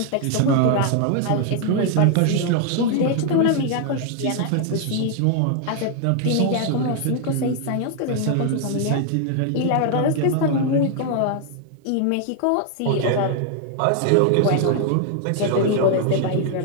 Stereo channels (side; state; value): both; different; correlation 0.00